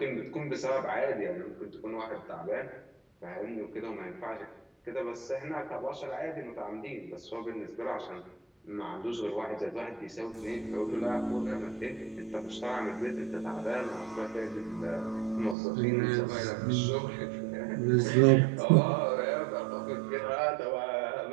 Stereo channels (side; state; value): left; drops out; at 15.6 s